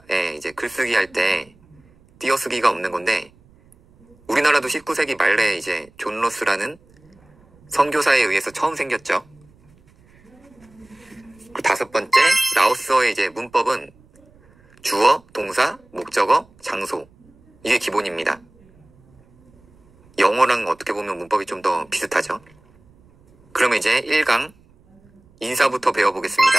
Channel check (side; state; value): right; noise; rumble, 30 dB below the sound